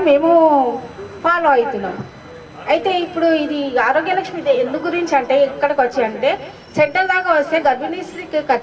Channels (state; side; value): identical; both; correlation 1.00